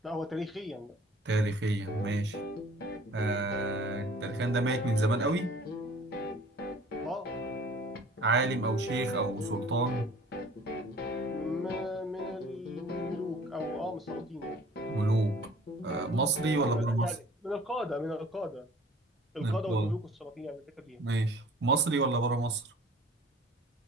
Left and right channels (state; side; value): normal; both; correlation 0.49